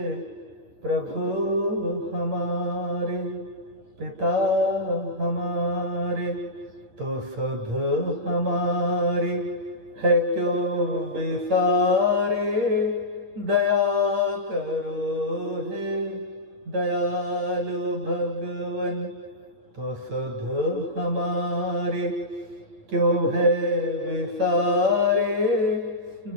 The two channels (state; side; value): late; left; 9.6 ms